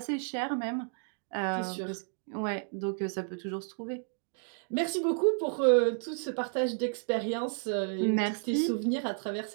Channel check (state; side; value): silent; left; 57 dB below the other